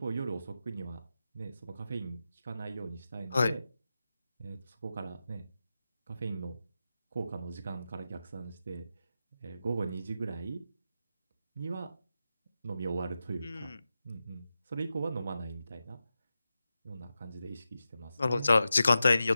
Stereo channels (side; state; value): both; inverted; correlation -0.91